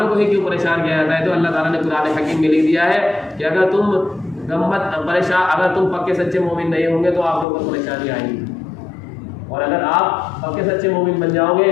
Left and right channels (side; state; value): right; drops out; at 7.5 s